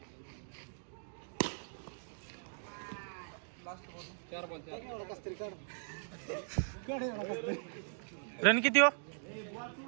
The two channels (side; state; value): left; silent; digital silence